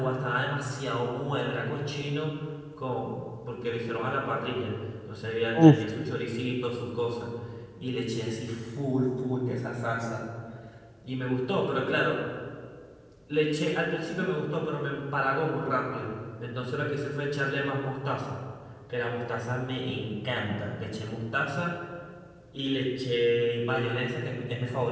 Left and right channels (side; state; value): both; identical; correlation 1.00